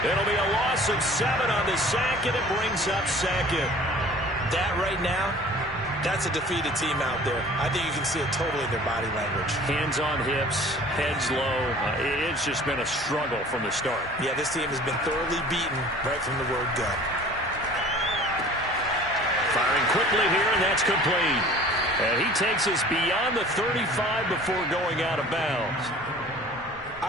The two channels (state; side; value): normal; both; correlation 0.47